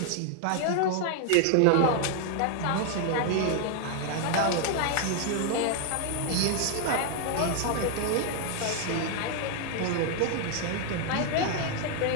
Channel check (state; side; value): different; both; correlation 0.00